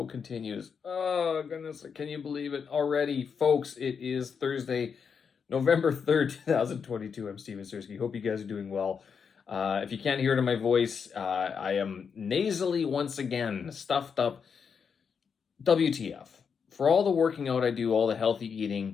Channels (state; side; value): quieter; right; 6.4 dB